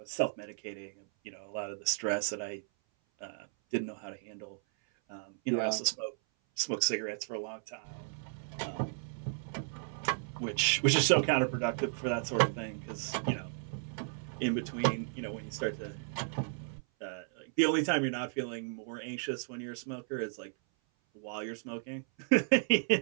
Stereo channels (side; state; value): left; silent; 55 dB below the other